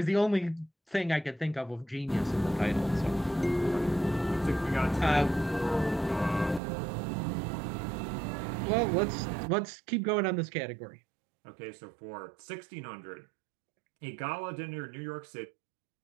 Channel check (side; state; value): left; drops out; at 6.6 s